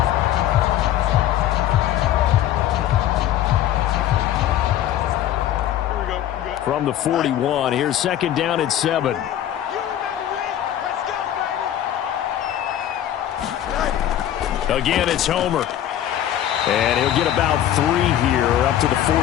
From the 41, here's 2nd down and 7. Again, it's Homer. And he'll get about 3 here up to the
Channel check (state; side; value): quieter; right; 11.7 dB